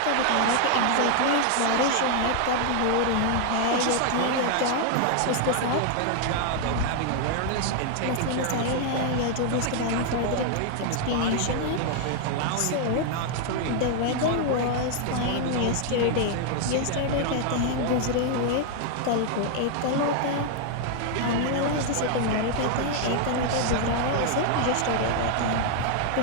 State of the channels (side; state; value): both; different; correlation 0.00